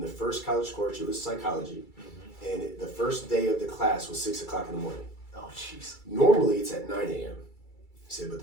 the first college course, it was psychology, and the first day of the class was 6 o'clock in the morning. Oh, jeez. Normally, it's at 9 a.m. He said, but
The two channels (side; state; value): right; late; 2.3 ms